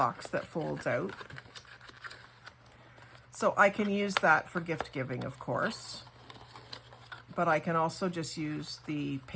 that folds out. So I can use that for gift giving, of course, but I can also just use the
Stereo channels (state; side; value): identical; both; correlation 1.00